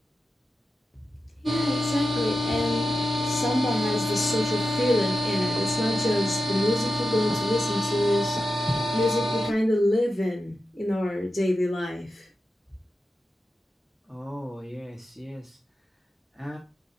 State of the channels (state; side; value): normal; both; correlation 0.91